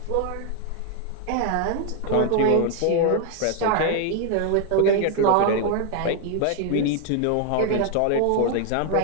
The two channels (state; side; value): different; both; correlation 0.00